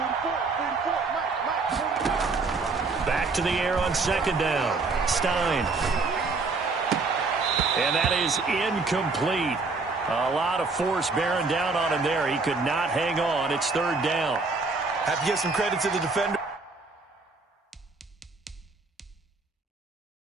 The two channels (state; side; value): quieter; left; 3.9 dB